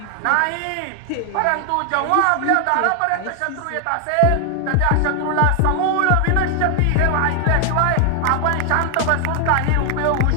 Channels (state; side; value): different; both; correlation 0.00